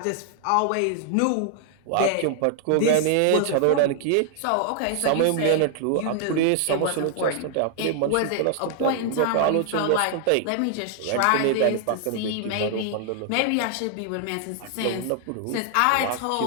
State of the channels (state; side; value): different; both; correlation 0.00